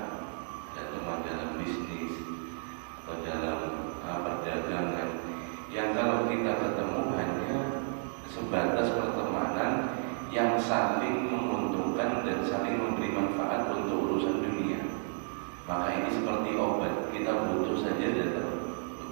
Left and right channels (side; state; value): left; silent; 56 dB below the other